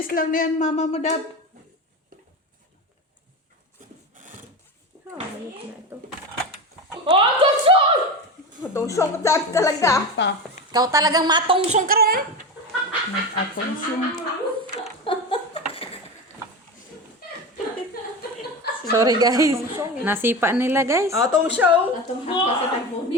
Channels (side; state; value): both; normal; correlation 0.24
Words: lang na yan, mama mo, Dab. Ayos na ito. Oh, tusong! Tusong ka talaga. Pa. Ikaw talagang matungsong ka ron. Atong siyong. Sorry guys. Nasipa nila guys. Atong show. Atong hapa sa